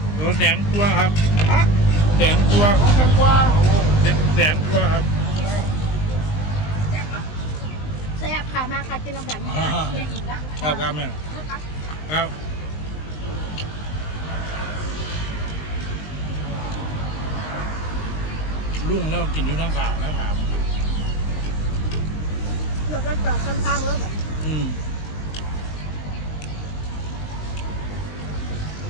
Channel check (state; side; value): late; right; 19 ms